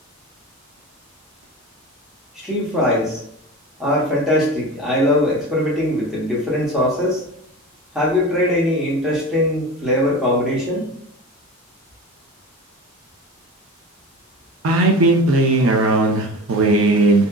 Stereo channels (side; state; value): both; normal; correlation 0.32